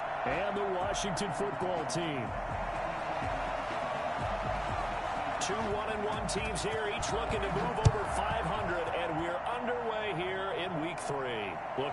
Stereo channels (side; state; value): both; identical; correlation 1.00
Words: and the Washington football team. Two 1-1 teams here, each looking to move over 500, and we're underway here in Week 3.